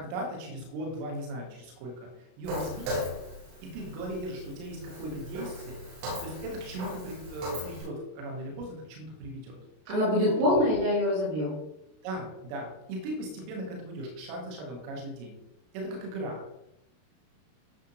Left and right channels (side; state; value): left; late; 33 ms